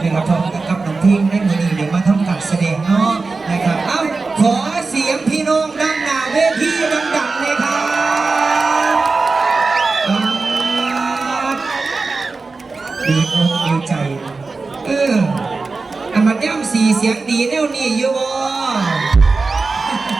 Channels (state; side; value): quieter; left; 4.0 dB